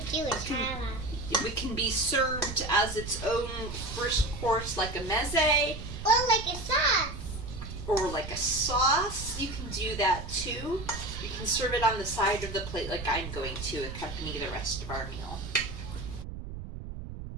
Jewish challah. It can be served as its own first course, like a meze, Or like a sauce. or like a sauce. You can do that too. You can serve it on the side of the plate like I'm going to accompany the rest of our meal.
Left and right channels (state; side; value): noise; right; rumble, 9 dB below the sound